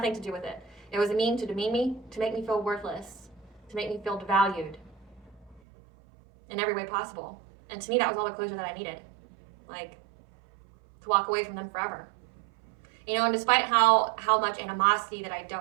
to do with it. It was a mean to demean me, to make me feel worthless, to make me feel devalued in every way possible. And to me, that was all the closure that I needed. Like, to walk away from them forever. You know, and despite how much animosity that I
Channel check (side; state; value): left; drops out; at 5.6 s